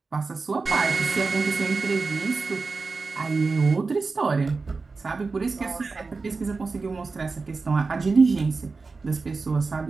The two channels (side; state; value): left; quieter; 4.2 dB